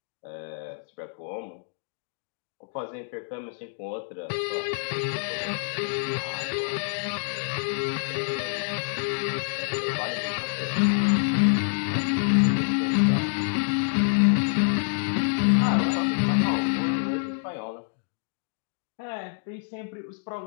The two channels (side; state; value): right; silent; digital silence